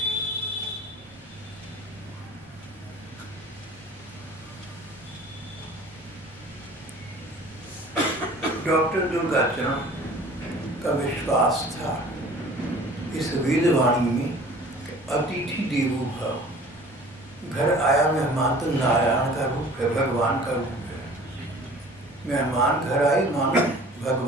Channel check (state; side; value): normal; both; correlation 0.47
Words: डॉक्टर दुर्गा चरण का विश्वास था इस वेदवाणी में, अतिथि देवो भव। घर आया मेहमान तो नारायण का रूप है, भगवान का रूप है। मेहमान घर आए मानो